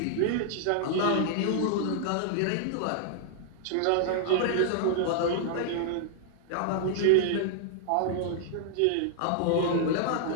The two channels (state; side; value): different; both; correlation -0.01